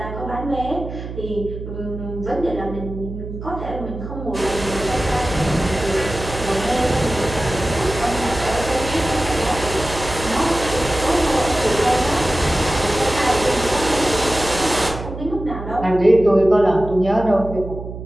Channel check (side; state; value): right; noise; hum, 9 dB below the sound